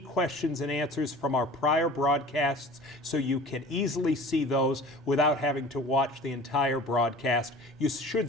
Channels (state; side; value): normal; both; correlation 0.43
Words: and answers from our prior broadcasts so you can easily see those without having to watch the entire broadcast. You should